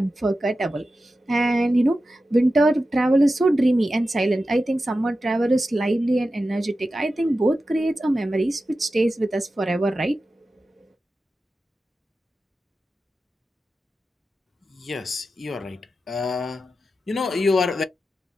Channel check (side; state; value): both; normal; correlation 0.92